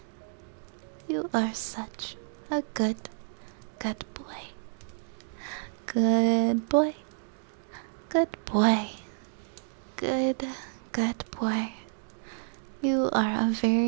You are such a good, good boy. Good boy. Good boy. Good, good boy. You are a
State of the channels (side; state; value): left; silent; digital silence